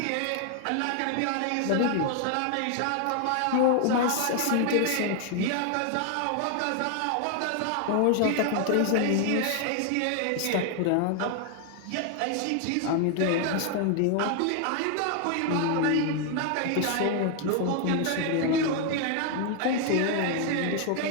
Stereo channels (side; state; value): both; different; correlation 0.00